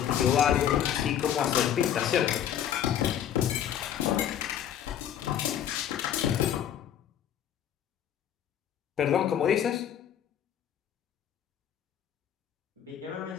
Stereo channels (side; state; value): right; quieter; 9.9 dB